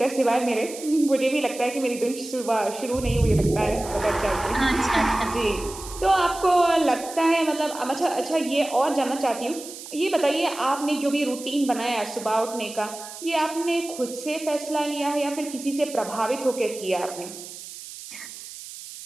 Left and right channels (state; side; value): noise; right; hiss, 13 dB below the sound